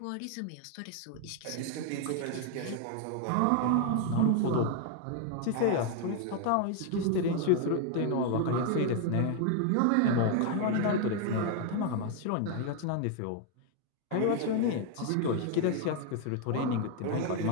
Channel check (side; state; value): both; different; correlation 0.00